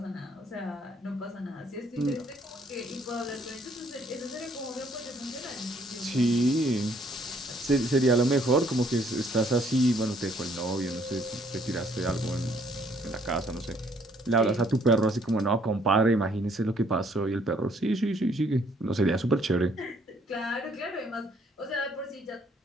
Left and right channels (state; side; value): normal; both; correlation 0.65